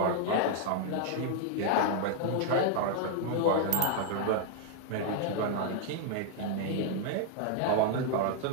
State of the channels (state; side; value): different; both; correlation 0.00